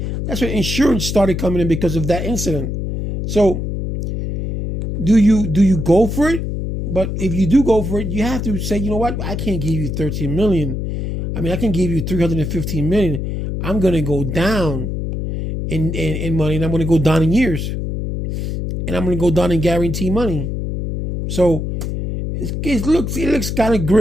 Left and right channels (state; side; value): noise; left; hum, 3 dB below the sound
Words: insurance started coming in because of that incident. So, do you go for it? But if you do go for it, you have to say, you know what, I can't give you $13 million. I mean, I can give you $315 million. I'm gonna go down in money, and I'm going to go down in years, and I'm going to go down in guarantee money. So it looks kind of